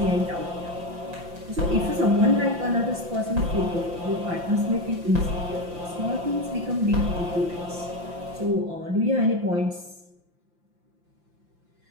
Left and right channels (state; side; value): late; left; 5.8 ms